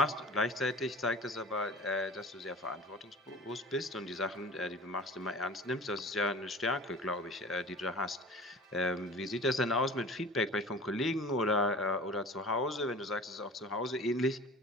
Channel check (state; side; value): normal; both; correlation 0.40